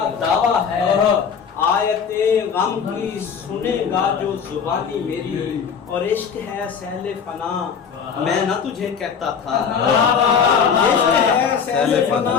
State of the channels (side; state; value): right; quieter; 6.7 dB